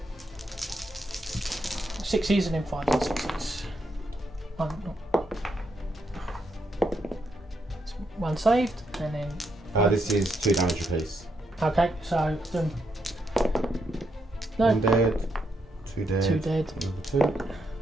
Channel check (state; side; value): normal; both; correlation 0.79